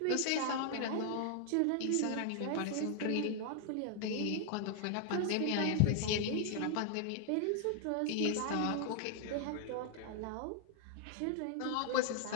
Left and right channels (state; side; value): different; both; correlation 0.00